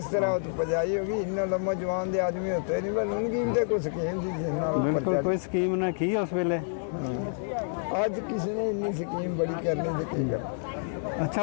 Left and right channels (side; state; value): right; silent; 58 dB below the other